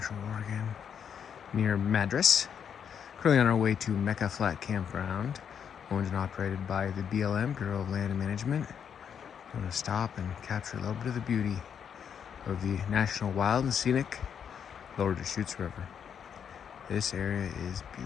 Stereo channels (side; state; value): right; quieter; 7.8 dB